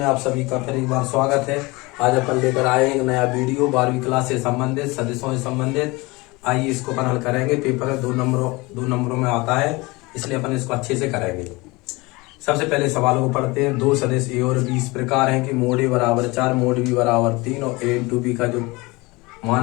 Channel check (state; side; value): quieter; right; 23.8 dB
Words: आप सभी का फिर एक बार स्वागत है। आज अपन लेकर आए एक नया वीडियो 12वीं क्लास से संबंधित सदिशों से संबंधित। आइए इसको अपन हल करेंगे। पेपर में दो नंबरों में आता है, इसलिए अपन इसको अच्छे से करेंगे। सबसे पहले सवालों को पढ़ते हैं। दो सदिश ए और बी इस प्रकार है कि मोड ए बराबर 4, मोड बी बराबर 3 और ए इंटू बी का जो